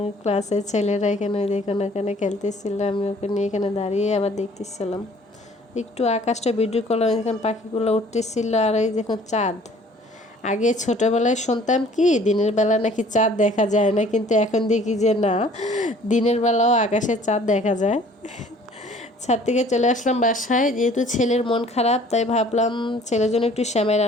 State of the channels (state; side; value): normal; both; correlation 0.54